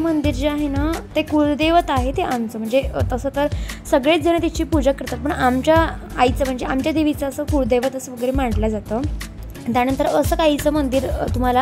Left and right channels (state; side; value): identical; both; correlation 1.00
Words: जे आहे ना, ते कुलदैवत आहे। ते आमचं म्हणजे तसं तर सगळेच जण तिची पूजा करतात, पण आमच्या आईचं म्हणजे आमच्या देवीचं असं कुलदैवत असं वगैरे मानलं जातं। त्यानंतर असं काहीचं मंदिर